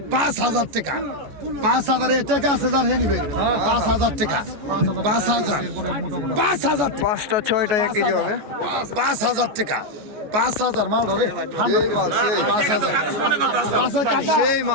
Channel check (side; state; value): left; late; 14 ms